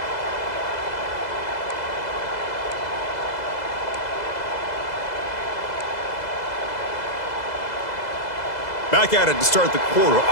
Back at it to start the quarter.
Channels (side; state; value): right; late; 2.0 ms